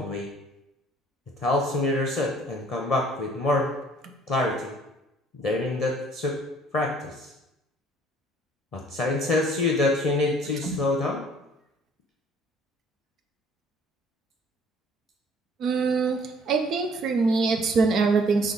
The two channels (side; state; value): both; normal; correlation 0.57